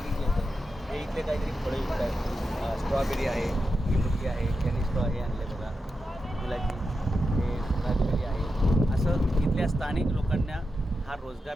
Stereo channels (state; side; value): normal; both; correlation 0.89